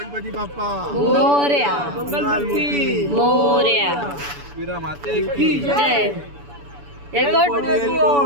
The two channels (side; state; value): left; late; 7.0 ms